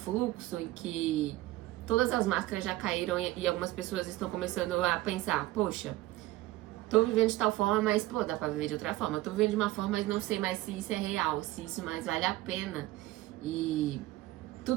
em que todas as máscaras já caíram e algumas pessoas estão começando a pensar, poxa, tô vivendo de tal forma, mas, pô, dá pra viver de outra forma. Tô vivendo de uma forma, mas não sei mais se isso é real, se isso mais vale a pena. E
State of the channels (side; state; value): left; quieter; 17.3 dB